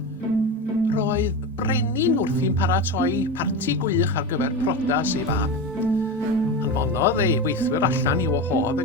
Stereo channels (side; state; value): both; normal; correlation 0.22